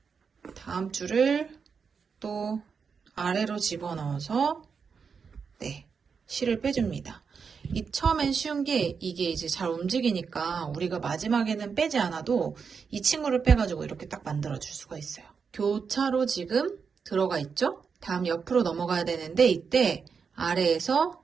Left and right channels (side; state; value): left; quieter; 5.9 dB